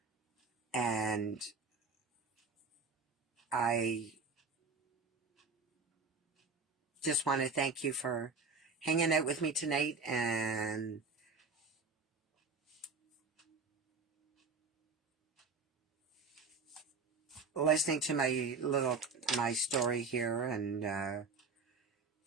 And I just want to thank you for hanging out with me tonight and listening to my story here. And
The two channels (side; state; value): left; quieter; 4.3 dB